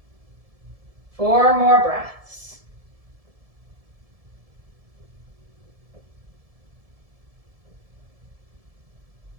4 more breaths.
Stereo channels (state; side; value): late; left; 1.7 ms